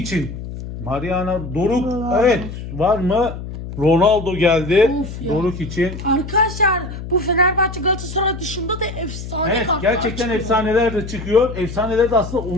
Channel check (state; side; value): noise; left; hum, 9 dB below the sound